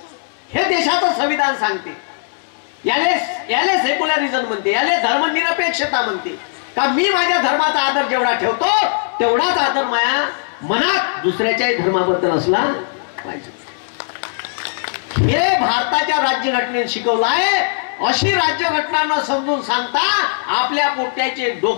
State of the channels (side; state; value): right; silent; digital silence